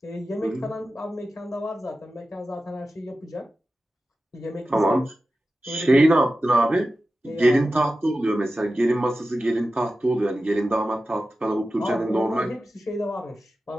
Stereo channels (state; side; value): normal; both; correlation 0.93